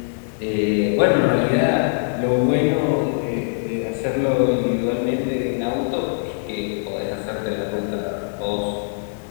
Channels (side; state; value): right; silent; digital silence